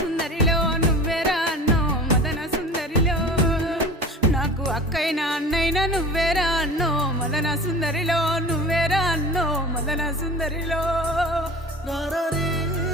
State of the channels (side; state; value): both; normal; correlation 0.37